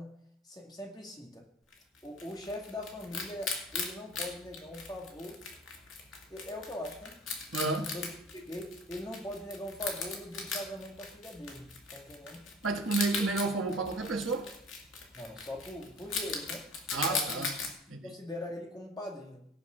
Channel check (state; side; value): normal; both; correlation 0.43